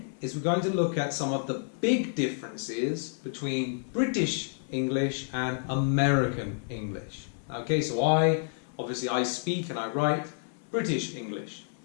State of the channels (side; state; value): right; silent; 58 dB below the other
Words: is we're going to look at some of the big differences between British English and American English. Okay, so obviously I speak and I write British English.